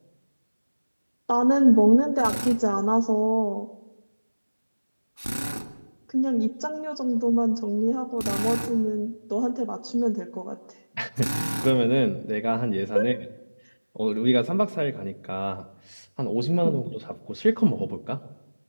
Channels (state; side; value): inverted; both; correlation -1.00